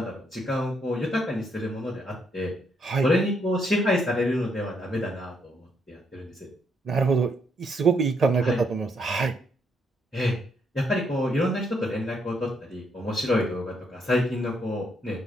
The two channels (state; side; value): normal; both; correlation 0.74